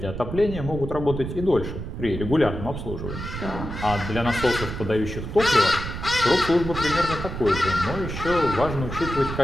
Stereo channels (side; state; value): right; noise; rumble, 7 dB below the sound